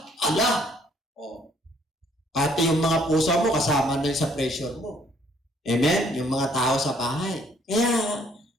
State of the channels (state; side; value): normal; both; correlation 0.64